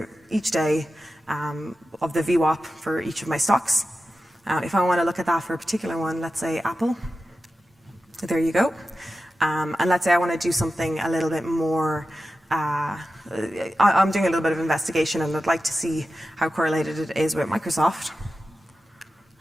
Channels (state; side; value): normal; both; correlation 0.92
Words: each day of the VWAP for each of my stocks. If I want to look at that for a particular one, let's say Apple, there you go. And let's say I want to do something a little bit more, I'm doing a little bit of investigation and I'd like to see how correlated it is with Microsoft.